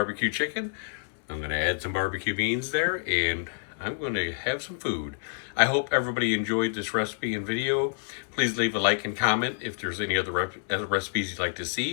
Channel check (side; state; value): right; silent; 59 dB below the other